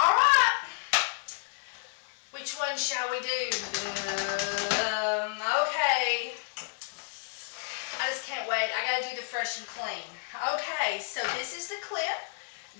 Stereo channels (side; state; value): right; silent; 57 dB below the other